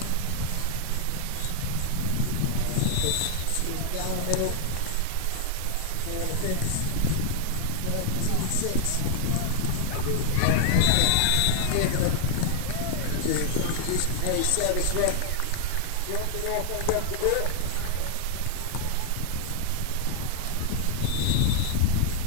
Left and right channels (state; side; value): different; both; correlation 0.00